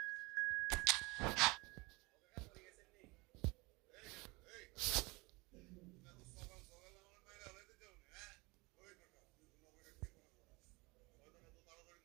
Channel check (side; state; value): left; quieter; 25.3 dB